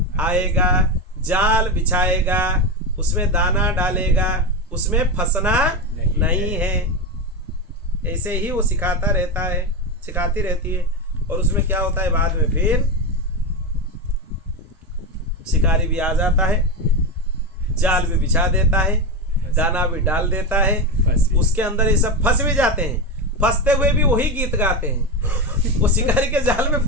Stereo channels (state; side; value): normal; both; correlation 0.15